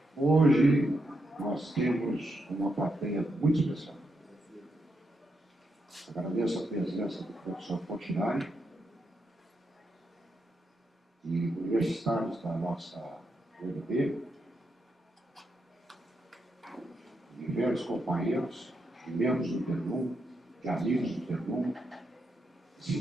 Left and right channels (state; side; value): normal; both; correlation 0.83